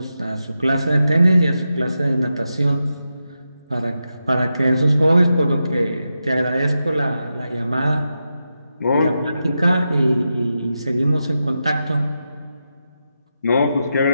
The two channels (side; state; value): both; inverted; correlation -0.89